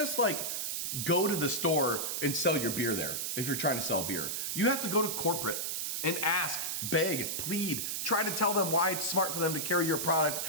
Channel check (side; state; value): right; noise; hiss, 2 dB below the sound